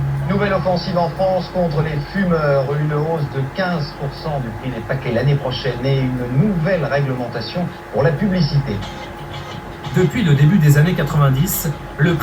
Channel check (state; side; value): identical; both; correlation 1.00